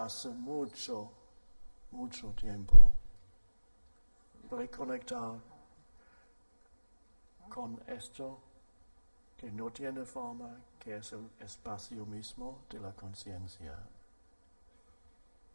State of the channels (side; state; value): both; inverted; correlation -1.00